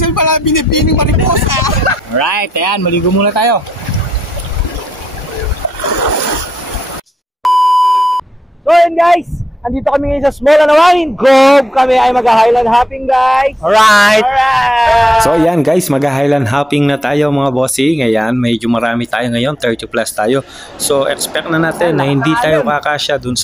pala binibining mariposa. Alright, ayan, maligo muna tayo. So yun guys, andito kami ngayon sa Small Anawangin Cove. Kami ay mag-highland hopping guys. Alright! So yan guys, mag-highland hopping na tayo mga bossing. Ayan, medyo marami tayo ngayon, 30 plus tayo. So expect na natin na hindi tayo kakasya dun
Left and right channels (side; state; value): both; normal; correlation 0.81